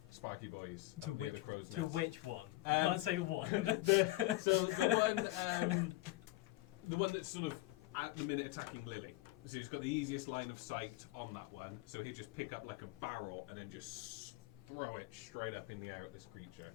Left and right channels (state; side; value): quieter; right; 18.5 dB